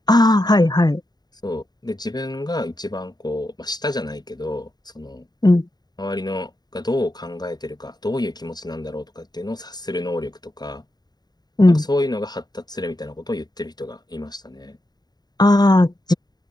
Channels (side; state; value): right; late; 0.20 ms